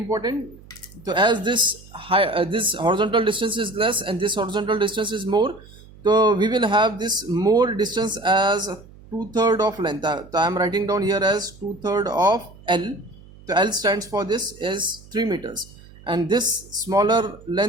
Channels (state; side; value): noise; right; hum, 22 dB below the sound